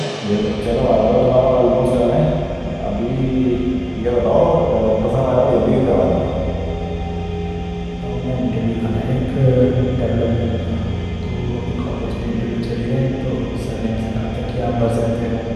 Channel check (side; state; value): both; identical; correlation 1.00